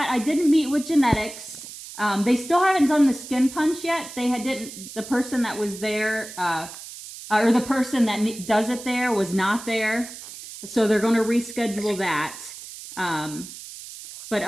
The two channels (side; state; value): right; noise; hiss, 13 dB below the sound